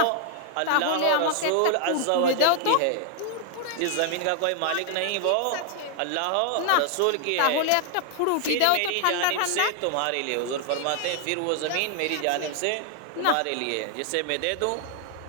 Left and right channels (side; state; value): both; different; correlation 0.00